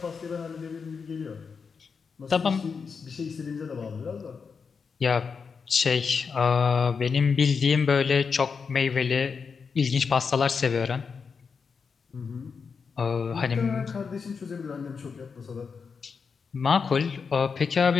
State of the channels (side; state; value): right; quieter; 5.6 dB